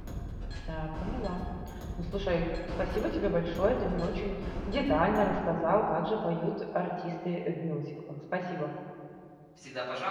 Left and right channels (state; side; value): identical; both; correlation 1.00